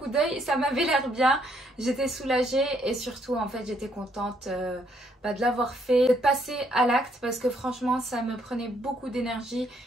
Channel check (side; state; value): both; normal; correlation 0.70